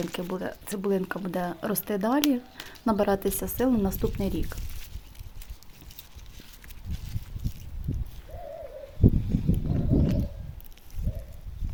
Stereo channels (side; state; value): both; identical; correlation 1.00